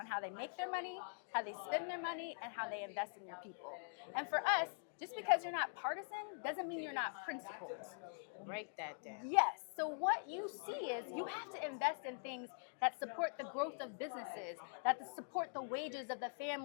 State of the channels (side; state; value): right; silent; digital silence